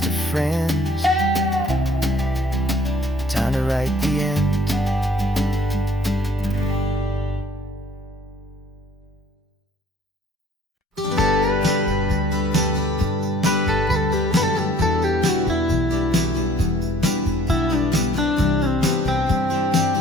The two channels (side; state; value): both; normal; correlation 0.57